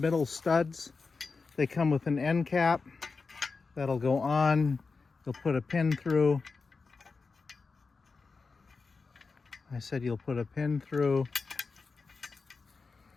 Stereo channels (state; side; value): quieter; right; 4.5 dB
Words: studs. They come with an end cap that'll go on. You'll put a pin through. I said you'll put a pin through.